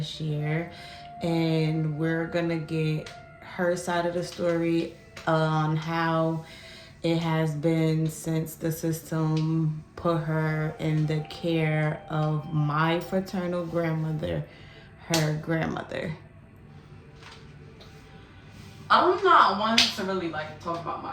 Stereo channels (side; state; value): both; identical; correlation 1.00